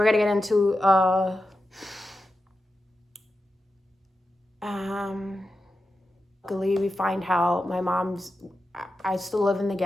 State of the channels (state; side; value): normal; both; correlation 0.90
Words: gonna get into luckily we find out I still live in the